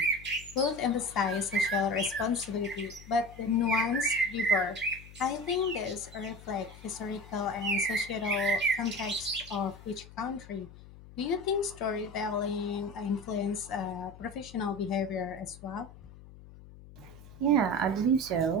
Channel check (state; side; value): noise; left; hum, 18 dB below the sound